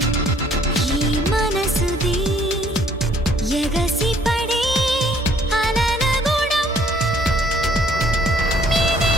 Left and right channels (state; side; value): normal; both; correlation 0.61